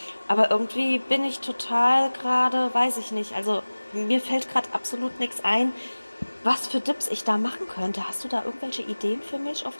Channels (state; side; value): inverted; both; correlation -1.00